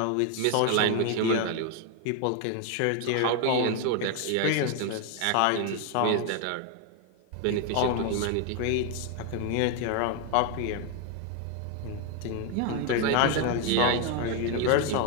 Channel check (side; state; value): both; different; correlation 0.01